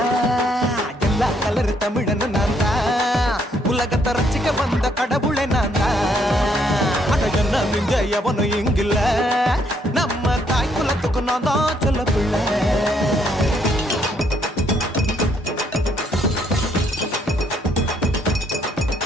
எல்லா கலர் தமிழன்னு நான் தான் உலகத்தை ரசிக்க வந்த கடவுளை நான் தான். அட என்ன மிஞ்ச எவனும் இங்கில்ல நம்ம தாய் குலத்துக்கு நான் தான் சொல்ல பிள்ளை.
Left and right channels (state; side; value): normal; both; correlation 0.70